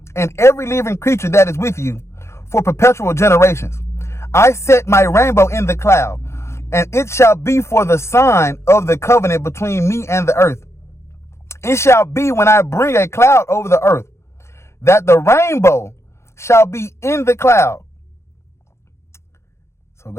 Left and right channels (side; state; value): right; late; 0.13 ms